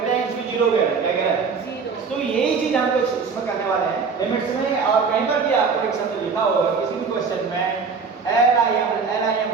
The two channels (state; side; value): quieter; left; 5.2 dB